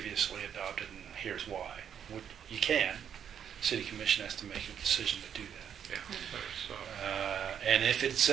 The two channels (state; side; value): quieter; left; 8.5 dB